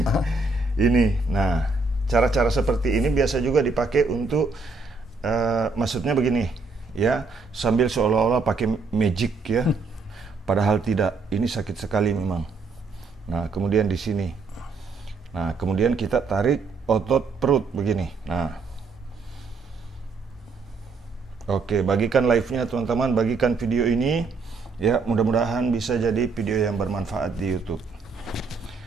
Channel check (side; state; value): left; quieter; 4.1 dB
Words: Ini, nah, cara-cara seperti ini biasa juga dipakai untuk, maksudnya begini, ya, sambil seolah-olah pakai magic, ya. Padahal tidak, ini sakit sekali memang. Nah, kemudian di sini. Nah, kemudian kita tarik otot perut begini. Nah, oke, bagikan live-nya teman-teman, bagikan video ini. Ya, mudah-mudahan bisa jadi video yang bermanfaat di YouTube.